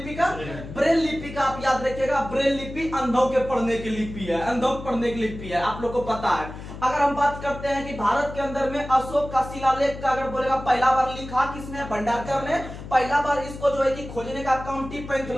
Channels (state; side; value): noise; left; hum, 12 dB below the sound